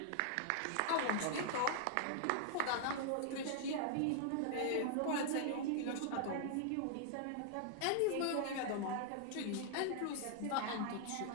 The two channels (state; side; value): different; both; correlation 0.00